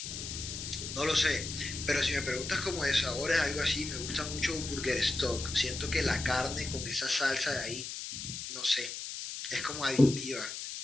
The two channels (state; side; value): noise; left; hiss, 7 dB below the sound